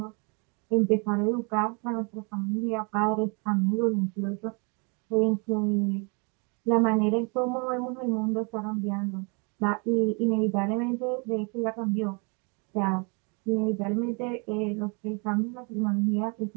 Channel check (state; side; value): quieter; left; 33.3 dB